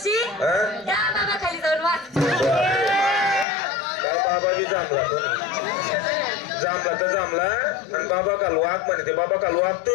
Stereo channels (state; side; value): drops out; right; at 3.5 s